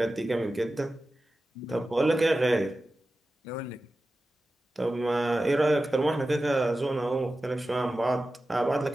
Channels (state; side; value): normal; both; correlation 0.94